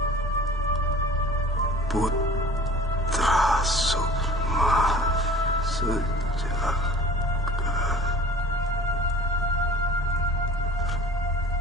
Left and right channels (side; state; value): both; normal; correlation 0.46